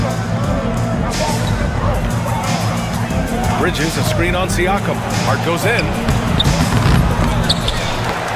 Bridges, a screen on Siakam. Hart goes in.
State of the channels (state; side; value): identical; both; correlation 1.00